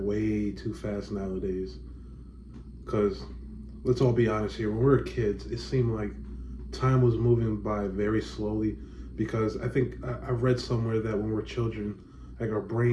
too fast nowadays? Because let's all be honest here. When we were kids, it seemed like time was moving by very slowly. Because I think I read somewhere that when we're children, like our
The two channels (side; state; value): both; identical; correlation 1.00